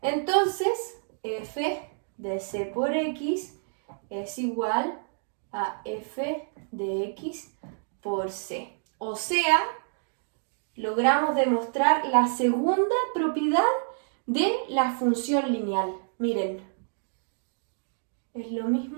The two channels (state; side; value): silent; left; digital silence